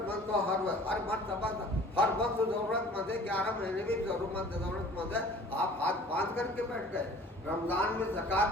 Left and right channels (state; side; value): normal; both; correlation 0.48